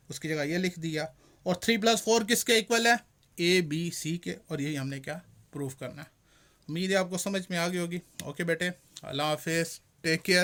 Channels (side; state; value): both; identical; correlation 1.00